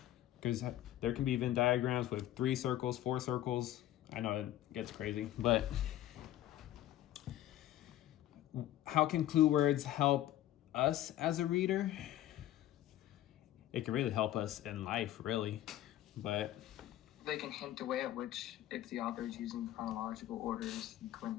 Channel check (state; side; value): quieter; right; 13.4 dB